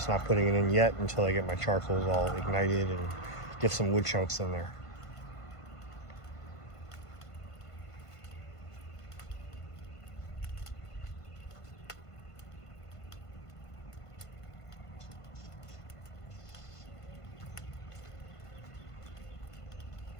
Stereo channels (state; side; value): late; right; 1.5 ms